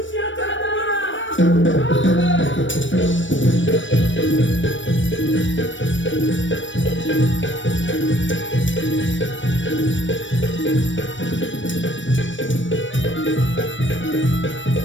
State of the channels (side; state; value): right; late; 0.56 ms